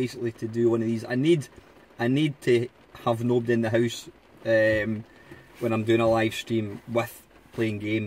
to do one of these. I need to have nobody in the house when I'm doing a live stream with playing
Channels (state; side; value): identical; both; correlation 1.00